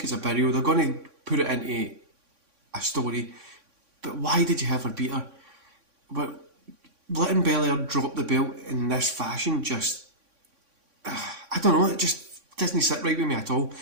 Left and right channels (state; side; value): late; left; 3.6 ms